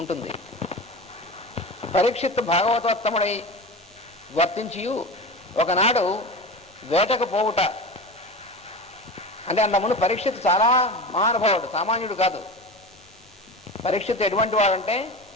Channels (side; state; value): both; normal; correlation 0.29